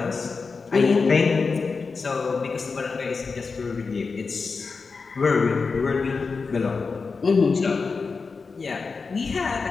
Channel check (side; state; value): right; quieter; 4.7 dB